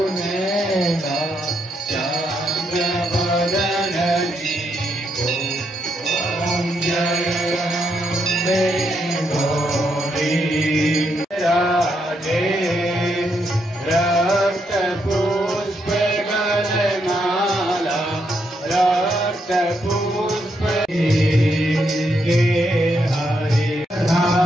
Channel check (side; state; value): both; normal; correlation 0.79